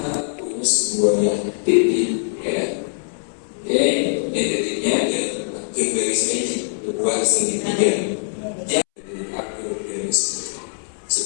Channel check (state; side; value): silent; right; 64 dB below the other